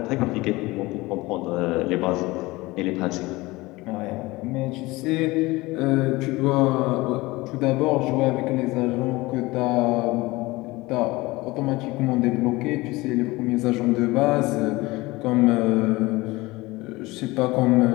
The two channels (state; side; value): quieter; right; 21.2 dB